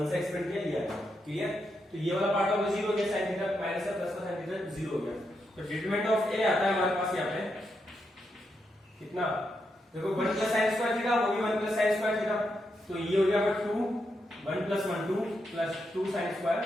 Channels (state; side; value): normal; both; correlation 0.83